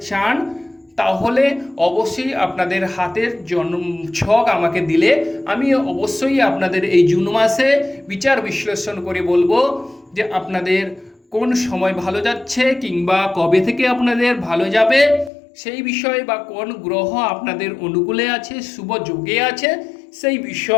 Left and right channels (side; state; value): right; drops out; at 15.3 s